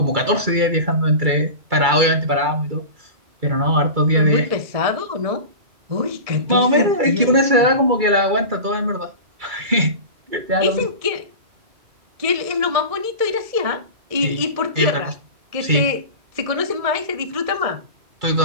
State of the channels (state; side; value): late; left; 2.3 ms